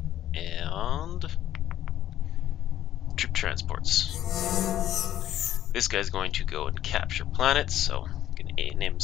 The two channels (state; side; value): quieter; right; 12.2 dB